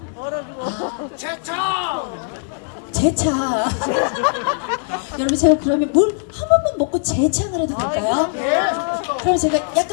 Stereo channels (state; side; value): silent; right; 66 dB below the other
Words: 제 차. 여러분 제가 그러면 물 한 번만 먹고 제 차를 해도 될까요? 그럼 제가